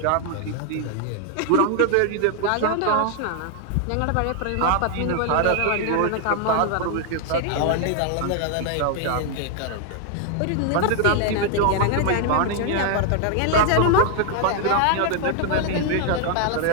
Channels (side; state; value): both; different; correlation 0.00